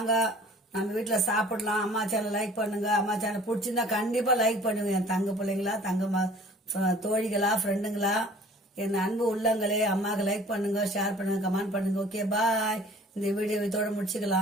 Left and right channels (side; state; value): both; normal; correlation 0.50